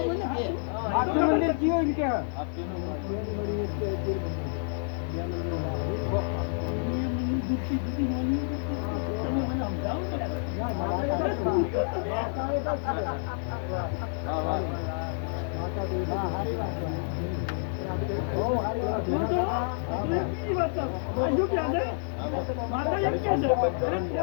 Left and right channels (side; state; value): right; silent; 59 dB below the other